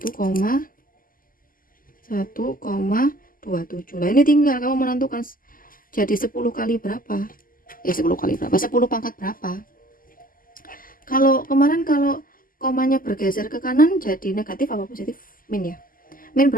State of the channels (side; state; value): right; late; 0.41 ms